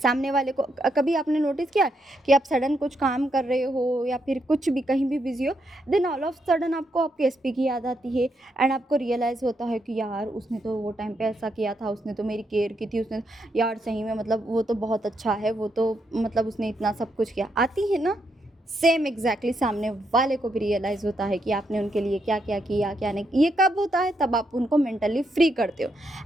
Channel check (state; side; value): normal; both; correlation 0.79